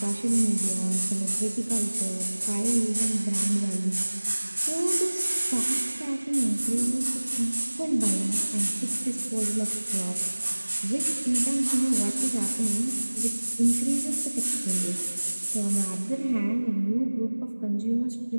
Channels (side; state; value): both; inverted; correlation -1.00